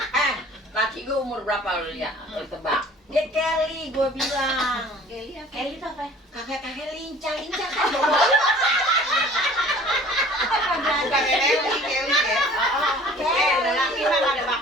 Laki gue umur berapa lu lihat? Lu tebak. Dia Kelly, gue bilang. Kelly apa? Kelly itu apa? Kakek-kakek lincah kan. Bukan Kelly ya. Lelaki mah nggak ada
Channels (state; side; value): normal; both; correlation 0.48